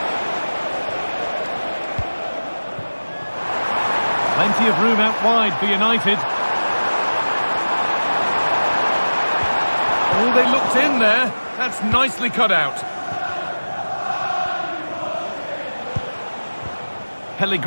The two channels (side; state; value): both; inverted; correlation -1.00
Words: Plenty of room out wide for United. Oh, they looked in there. That's nicely cut out.